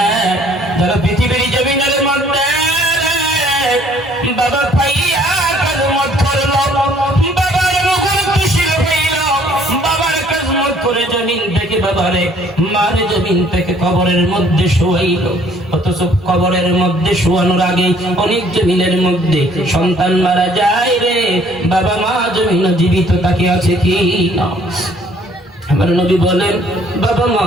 যারা পৃথিবীর জমিনের মধ্যে বাবা পাইয়া কাজমত করলো, বাবার মুখে খুশি হইল, বাবার কাজমত করে জমিন থেকে বাবারে মার জমিন থেকে কবরের মধ্যে শোয়াইল। অথচ কবরের মধ্যে শোয়ানোর আগে অনেক জমিনের মধ্যে সন্তান মারা যায় রে, বাবা মা জমিন জীবিত তাকে আছে কি না? আমার নবী বলেন, বাবা মা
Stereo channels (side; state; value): both; normal; correlation 0.60